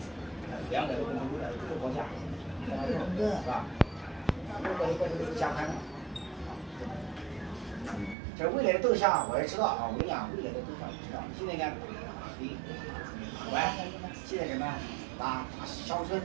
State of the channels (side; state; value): left; drops out; at 8.2 s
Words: 2个都不能为了都是国家，是吧？国家都加宽了。这未来的动向我也知道啊，我跟你讲，未来的动向我知道。现在呢，现在什么打乡村，